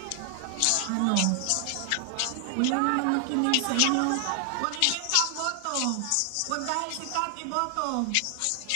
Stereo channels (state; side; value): different; both; correlation 0.00